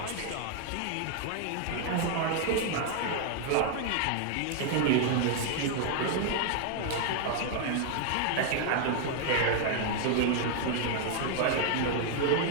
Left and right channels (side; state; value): both; different; correlation 0.00